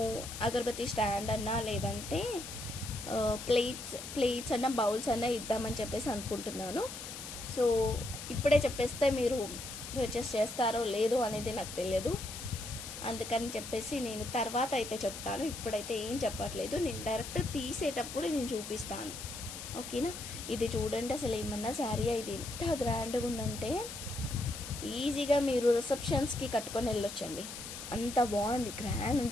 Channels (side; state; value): left; noise; hiss, 9 dB below the sound